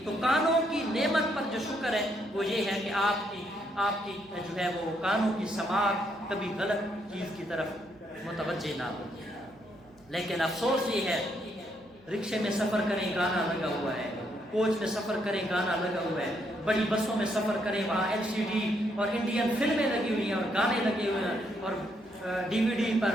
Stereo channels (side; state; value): right; noise; hum, 28 dB below the sound